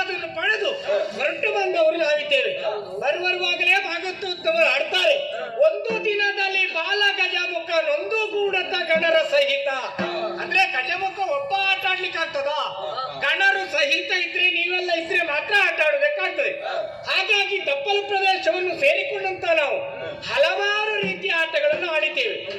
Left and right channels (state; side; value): identical; both; correlation 1.00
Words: ಪಡೆದು ಹೊರಟು ಬಂದವರು ನಾವಿದ್ದೇವೆ. ಬರುವರುವಾಗಲೇ ಭಾಗವತೋತ್ತಮರು ಆಡ್ತಾರೆ, ಒಂದು ದಿನದಲ್ಲಿ ಬಾಲ ಗಜಮುಖ ನೊಂದು ಗೂಡತ ಗಣರ ಸಹಿತ. ಅಂದ್ರೆ ಗಜಮುಖ ಒಬ್ಬ ಆಟ ಆಡ್ಲಿಕ್ಕೆ ಆಗ್ತದ? ಗಣರು ಸಹಿತ ಇದ್ರೆ, ನೀವೆಲ್ಲ ಇದ್ರೆ ಮಾತ್ರ ಆಟ ಆಡಬೇಕಾಗ್ತದೆ. ಹಾಗಾಗಿ ತಪ್ಪಲು ಪ್ರದೇಶವನ್ನು ಸೇರಿಕೊಂಡಂತ ನಾವು ಹಲವಾರು ರೀತಿಯ ಆಟಗಳನ್ನು ಆಡಿದ್ದೇವೆ.